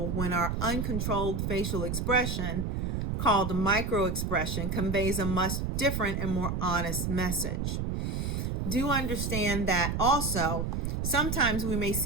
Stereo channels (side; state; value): right; noise; rumble, 1 dB below the sound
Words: when our uncontrolled facial expression, called microexpression, conveys a much different and more honest message. Do understand that also sometimes we may